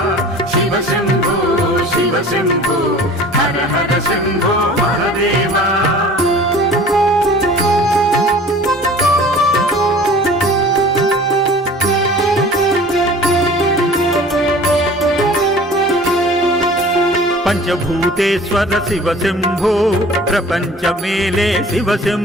శివ శంభో శివ శంభో హర హర శంభో మహాదేవ పంచభూతేశ్వర శివ శంభో ప్రపంచమేలే శివ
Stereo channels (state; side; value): normal; both; correlation 0.45